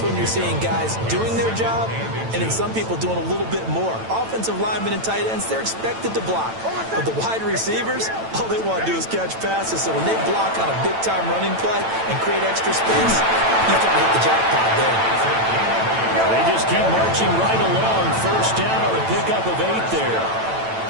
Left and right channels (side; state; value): left; late; 9.0 ms